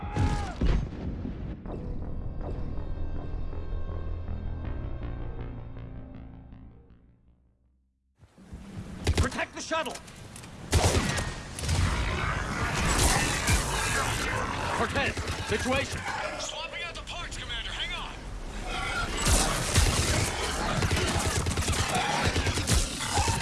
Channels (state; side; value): identical; both; correlation 1.00